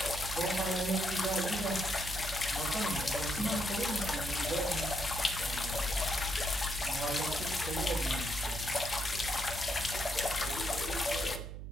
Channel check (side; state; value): right; noise; hum, 8 dB below the sound